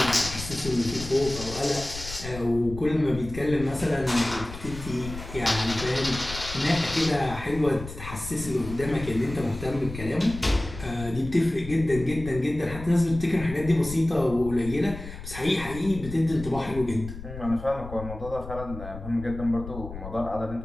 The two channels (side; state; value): left; noise; rumble, 11 dB below the sound